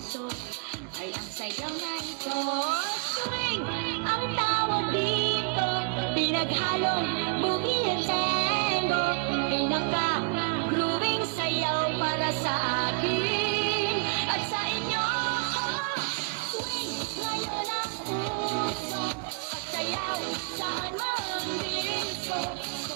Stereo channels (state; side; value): quieter; left; 35.6 dB